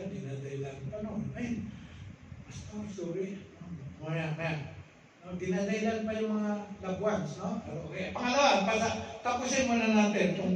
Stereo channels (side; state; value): both; identical; correlation 1.00